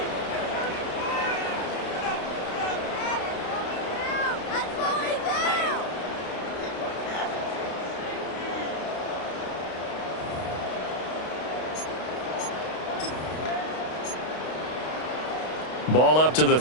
Ball up to the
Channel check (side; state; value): right; late; 32 ms